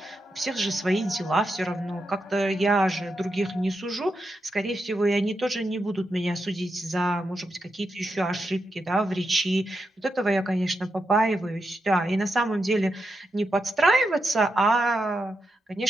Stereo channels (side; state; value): both; normal; correlation 0.86